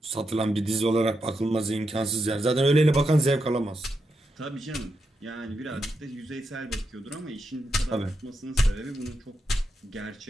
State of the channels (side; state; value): both; normal; correlation 0.85